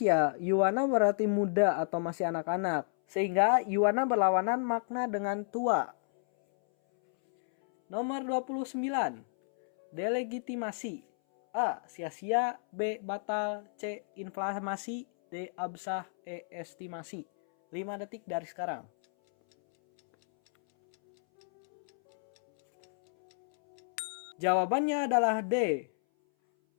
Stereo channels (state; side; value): silent; right; 57 dB below the other